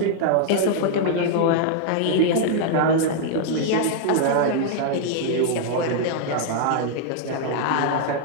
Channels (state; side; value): different; both; correlation -0.01